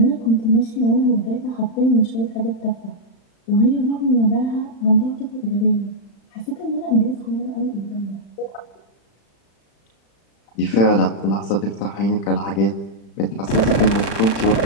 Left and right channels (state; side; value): late; right; 35 ms